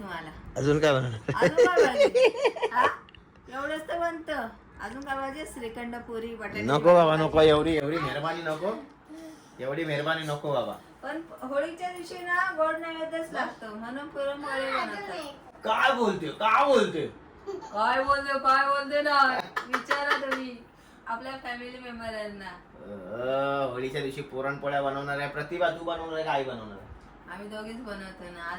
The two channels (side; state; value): both; identical; correlation 1.00